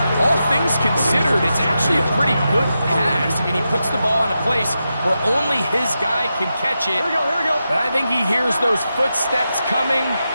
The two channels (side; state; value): both; inverted; correlation -0.89